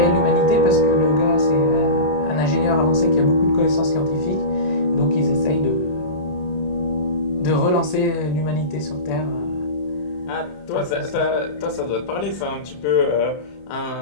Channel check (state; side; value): late; right; 27 ms